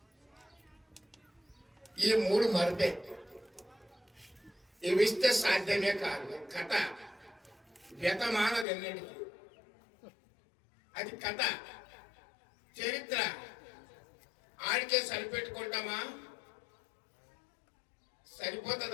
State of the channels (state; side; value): drops out; right; at 8.7 s